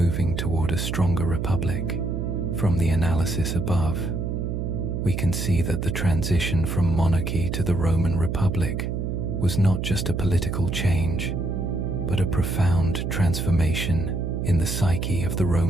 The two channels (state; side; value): noise; right; hum, 2 dB below the sound